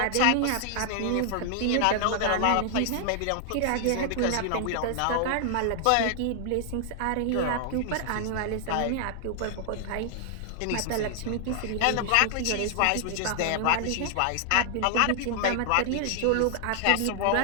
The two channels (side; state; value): both; different; correlation 0.00